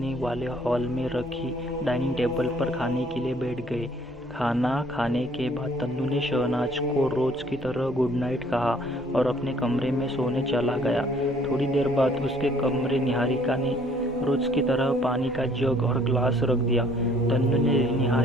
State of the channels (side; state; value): both; normal; correlation 0.60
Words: वाले हॉल में रखी डाइनिंग टेबल पर खाने के लिए बैठ गए। खाना खाने के बाद तन्नू ने शहनाज को रोज़ की तरह गुड नाइट कहा और अपने कमरे में सोने चला गया। थोड़ी देर बाद उसके कमरे निहारिका ने रोज़ की तरह पानी का जग और ग्लास रख दिया। तन्नू ने